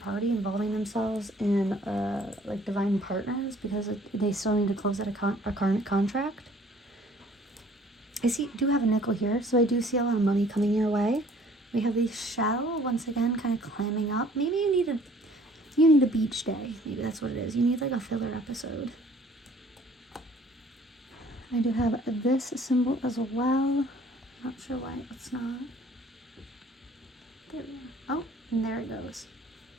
party involving themselves in like divine partners because they still need to close out a karmic contract. I do have a nickel here, so I do see a lot of money coming your way. We have the shell, once again, kind of climbing up. Maybe you need a beach day. Maybe that's what it is. You need like a filler episode. I do have this symbol as well. Not sure why it's not. There we go. Oh, and there it goes.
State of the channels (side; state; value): both; normal; correlation 0.55